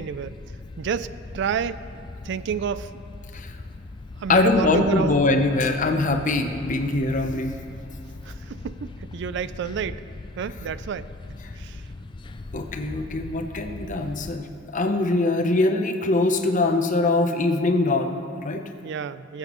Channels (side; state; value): both; normal; correlation 0.38